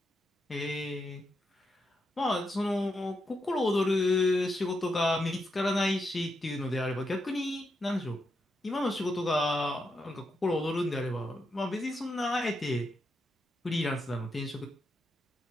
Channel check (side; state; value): both; normal; correlation 0.84